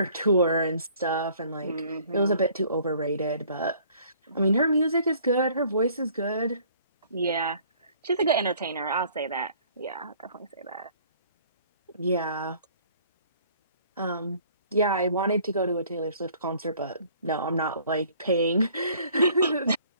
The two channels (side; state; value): both; inverted; correlation -0.56